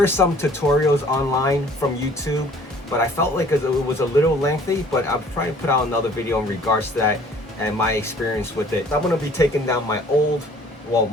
some tutorials online from YouTube, but I felt like it was a little lengthy. But I'm trying to put out another video in regards to that and my experience with it. I'm going to be taking down my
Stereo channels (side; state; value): both; normal; correlation 0.54